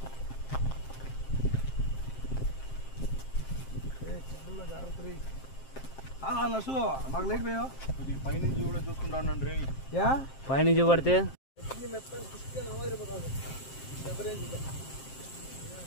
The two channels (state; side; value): late; right; 7.6 ms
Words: నర్సు మాకు లైట్ పోయా కొద్దిగా పైనుంచి కూడా చూసుకుంటాను రే పైనుంచి పడితే